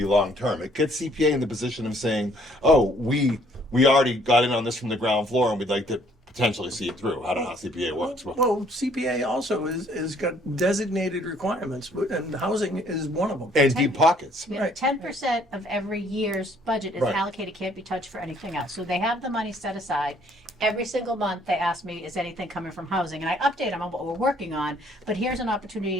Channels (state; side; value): normal; both; correlation 0.62